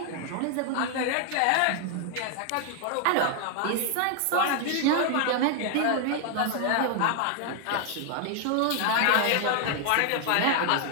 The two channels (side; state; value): both; different; correlation 0.00